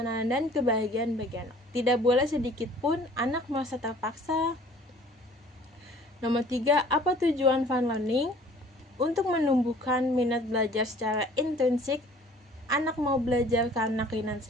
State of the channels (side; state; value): both; normal; correlation 0.51